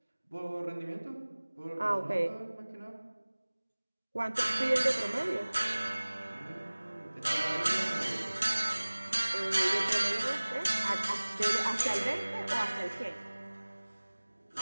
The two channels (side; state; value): both; inverted; correlation -1.00